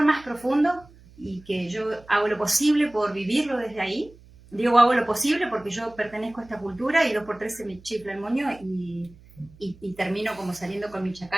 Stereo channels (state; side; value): noise; right; hum, 24 dB below the sound